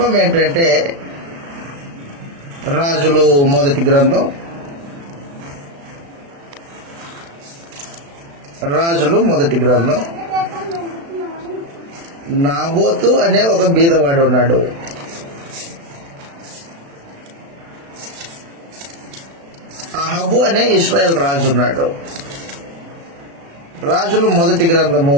ఏంటంటే, రాజులు మొదటి గ్రంథం, నాబోతు అనే ఒక బీదవాడు ఉన్నాడు. అహబు అనే ఇశ్రాయేల్ రాజు ఉన్నాడు. రాజులు మొదటి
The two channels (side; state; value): left; late; 36 ms